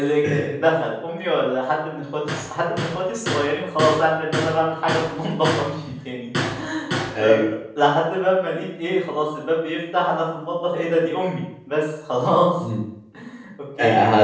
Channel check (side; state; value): both; identical; correlation 1.00